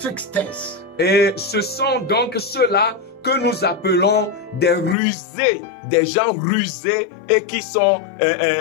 Et ce sont donc ceux-là que nous appelons des rusés, des gens rusés et qui sont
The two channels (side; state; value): right; drops out; at 5.0 s